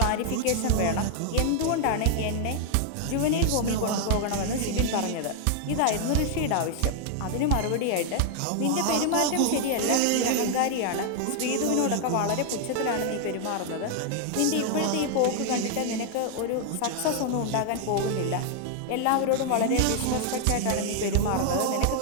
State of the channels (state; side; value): different; both; correlation 0.00